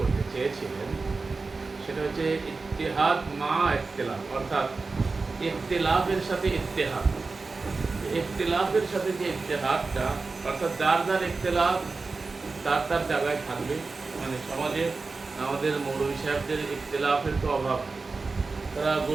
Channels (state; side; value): quieter; left; 4.0 dB